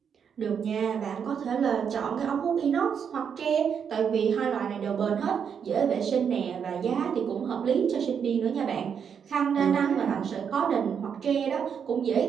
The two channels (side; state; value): left; quieter; 7.3 dB